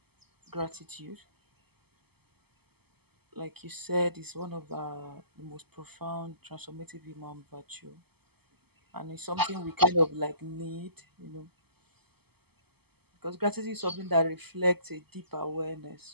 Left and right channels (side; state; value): left; late; 0.96 ms